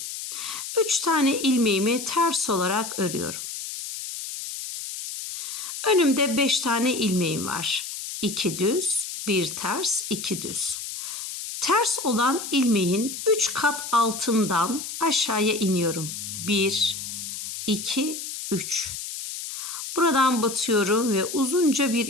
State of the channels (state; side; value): noise; left; hiss, 7 dB below the sound